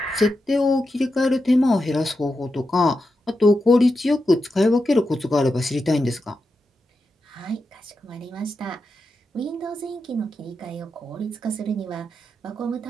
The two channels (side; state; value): both; normal; correlation 0.88